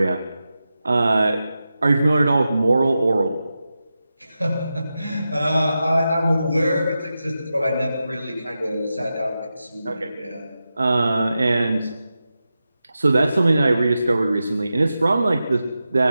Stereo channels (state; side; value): inverted; both; correlation -0.91